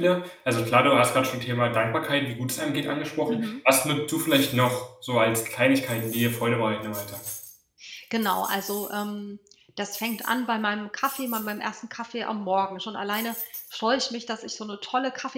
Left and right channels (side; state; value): both; identical; correlation 1.00